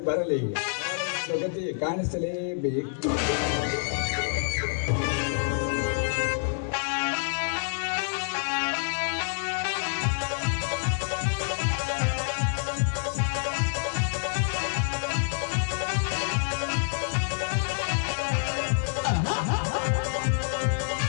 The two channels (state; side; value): silent; right; digital silence